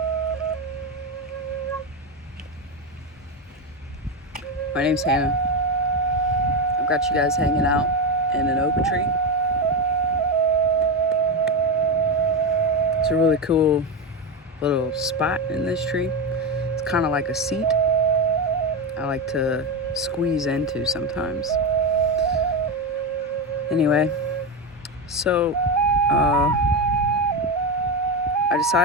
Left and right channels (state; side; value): normal; both; correlation 0.13